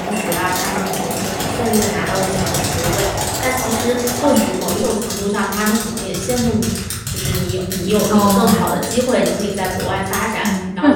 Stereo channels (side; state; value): both; identical; correlation 1.00